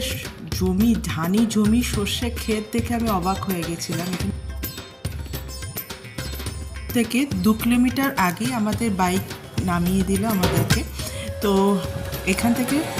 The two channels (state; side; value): identical; both; correlation 1.00